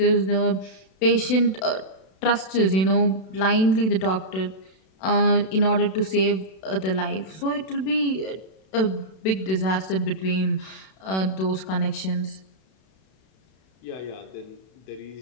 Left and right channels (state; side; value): late; right; 32 ms